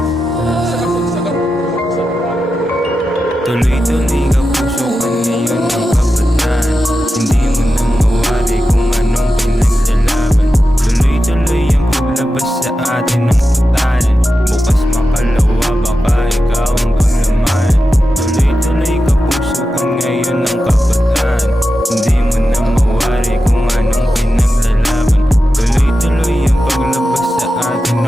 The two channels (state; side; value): normal; both; correlation 0.91